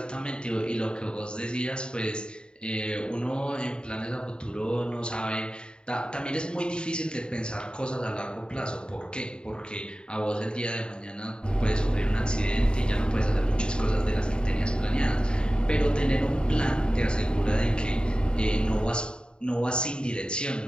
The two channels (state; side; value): late; right; 0.050 ms